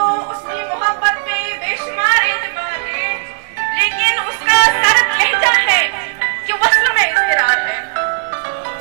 उसकी मोहब्बत पे बेशुमार एतबार है, लेकिन उसका सर्द लहजा है कि वस्ल में इज़्तिरार है।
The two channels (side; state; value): left; silent; digital silence